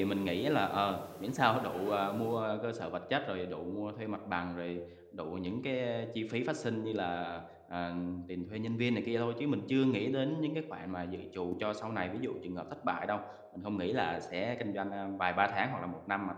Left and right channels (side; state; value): both; identical; correlation 1.00